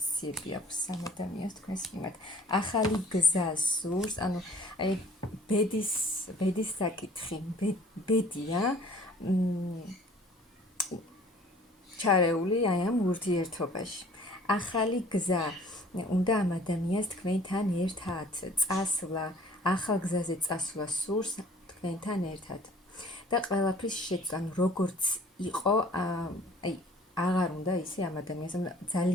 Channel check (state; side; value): normal; both; correlation 0.52